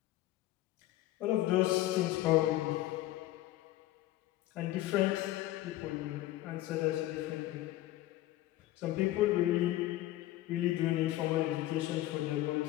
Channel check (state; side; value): quieter; right; 15.6 dB